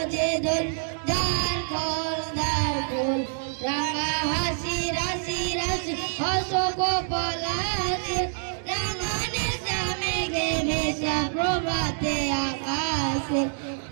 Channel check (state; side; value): silent; left; digital silence